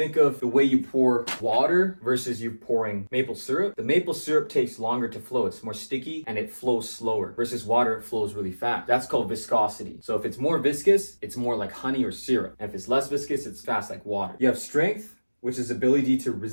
of the way you pour water versus you pouring maple syrup, the maple syrup takes longer to flow. It's more sticky and it flows slower versus water, it flows really fast. That's called viscosity. So if it's more viscous, it's more like honey or syrup. And if it's less viscous, it's fast like water. You have strength, which is ability to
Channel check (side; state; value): both; inverted; correlation -1.00